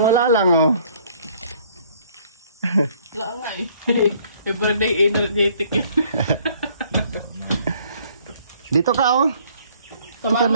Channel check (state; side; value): inverted; both; correlation -0.60